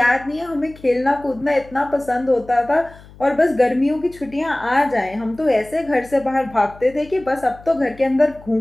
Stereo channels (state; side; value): noise; left; hum, 22 dB below the sound